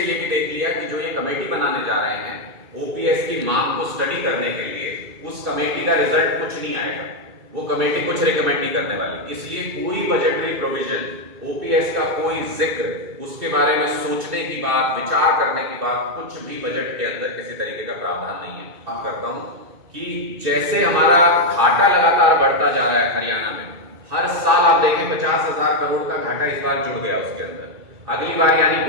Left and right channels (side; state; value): left; late; 2.3 ms